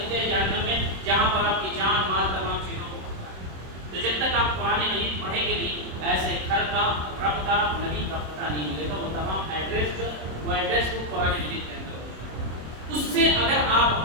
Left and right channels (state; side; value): late; left; 26 ms